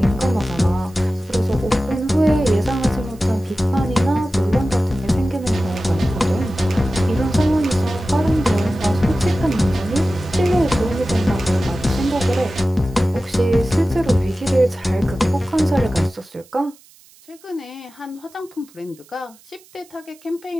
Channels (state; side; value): noise; right; hiss, 27 dB below the sound